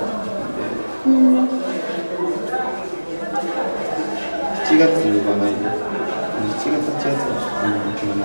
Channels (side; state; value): both; inverted; correlation -1.00